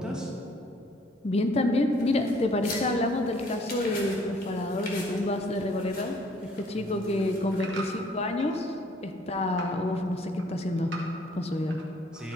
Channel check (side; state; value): both; normal; correlation 0.60